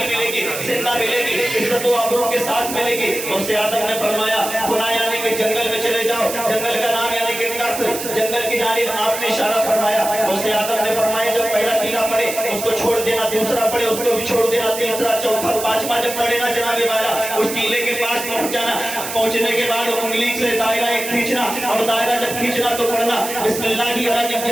ملے گی، زندہ ملے گی، عزت و آبرو کے ساتھ ملے گی۔ غوث اعظم نے فرمایا خدا یعنی کہ جنگل میں چلے جاؤ، جنگل کا نام یعنی کہ کف، جنگل کی جانب آپ نے اشارہ فرمایا۔ غوث اعظم نے فرمایا جب پہلا ٹیلا پڑے اس کو چھوڑ دینا، دوسرا پڑے اس کو بھی چھوڑ دینا، تیسرا چوتھا پانچواں جب پڑے نا جناب والا اس ٹیلے کے پاس پہنچ جانا، پہنچنے کے بعد انگلی سے دائرہ کھینچنا اور دائرہ جب کھینچنا تو پڑھنا بسم اللہ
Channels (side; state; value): right; noise; hiss, 7 dB below the sound